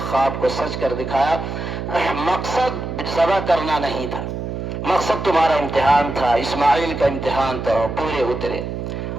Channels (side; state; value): right; noise; hum, 5 dB below the sound